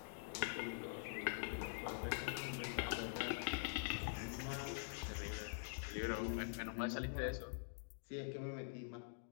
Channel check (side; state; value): right; silent; digital silence